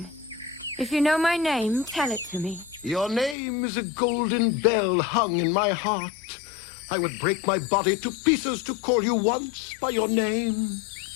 If you know my name, tell it to me. Your name is a golden bell hung in my heart. I would break my body to pieces to call you once by your name.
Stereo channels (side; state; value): right; drops out; at 3.4 s